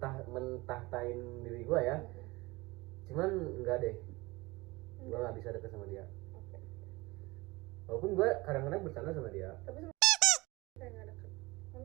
mentahtain diri gua ya, cuman enggak deh, gua nggak bisa deket sama dia. Walaupun gua kadang-kadang bercanda sama dia, Tapi kayak nggak deket.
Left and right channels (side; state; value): left; quieter; 22.3 dB